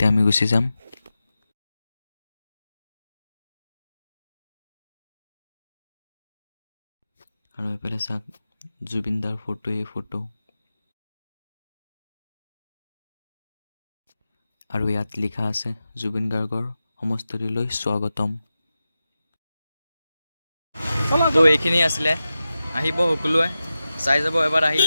আমি গুচি যাম। আৰু এইফালে চাওক, জুবিনদাৰ ফটো। আৰু ইয়াত লিখা আছে জুবিন গাৰ্গৰ সমষ্টিলৈ স্বাগতম। তো এইখিনি আছিলে, আহিব সকলোৱে চাই যাব এবাৰ আহি।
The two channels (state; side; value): inverted; both; correlation -0.93